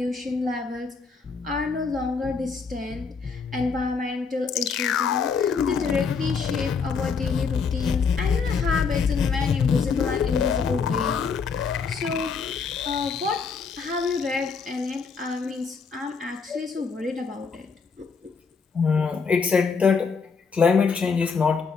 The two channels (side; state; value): right; quieter; 5.3 dB